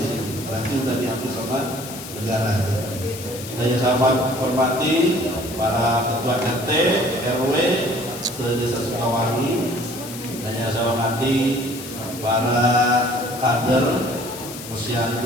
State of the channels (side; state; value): left; noise; hiss, 12 dB below the sound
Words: sini, berarti sudah dihapus sama negara. Dan yang saya hormati para ketua RT, RW, se-Desa Sukawangi, dan yang saya hormati para kader